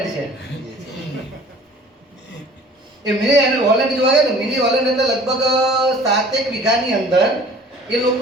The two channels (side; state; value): both; normal; correlation 0.48